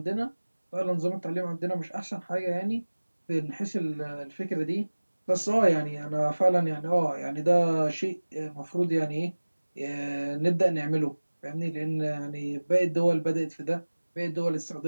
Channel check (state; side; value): inverted; both; correlation -1.00